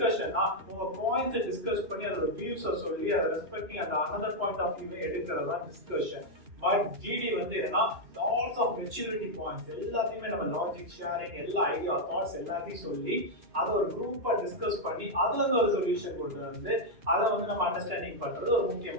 உங்க பாயிண்ட்ஸை டிஸ்கஸ் பண்ணி அதோட வியூஸை சொல்லி அதை ரெஸ்பெக்டிங் அந்த அனதர் பாயிண்ட் ஆஃப் வியூவை எடுக்கிறது தான் டிஸ்கஷன். பட் ஜிடி வந்து என்னன்னா லாட்ஸ் ஆஃப் மெச்சூரிட்டி பாயிண்ட்ஸ் எல்லாத்தையுமே நம்ம லாஜிக் ஷேரிங், எல்லா ஐடியா தாட்ஸ் எல்லாத்தையும் சொல்லி அதை ஒரு குரூப்பா டிஸ்கஸ் பண்ணி அதுல இருந்து ஒரு சொல்யூஷன் கொண்டு வந்து அதை வந்து நம்ம அண்டர்ஸ்டாண்டிங் பண்றது ஒரு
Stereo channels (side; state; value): left; late; 2.9 ms